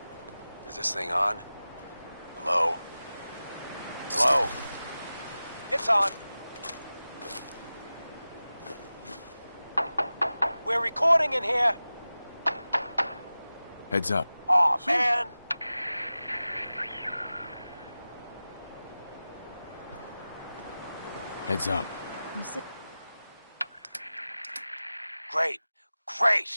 Is this thing on? Hello? Hello? It's on. We're recording in here. Heads up. Aw, man. Heads up. Great.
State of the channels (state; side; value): inverted; both; correlation -0.96